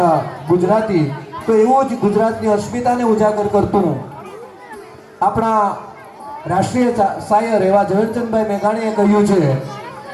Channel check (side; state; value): both; identical; correlation 1.00